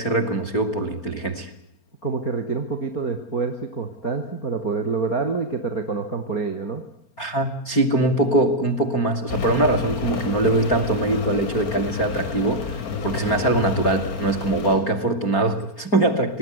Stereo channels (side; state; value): right; late; 4.4 ms